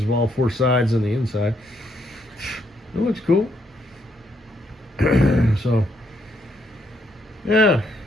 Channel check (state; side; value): normal; both; correlation 0.74